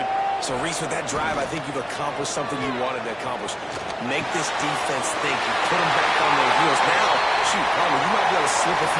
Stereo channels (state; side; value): identical; both; correlation 1.00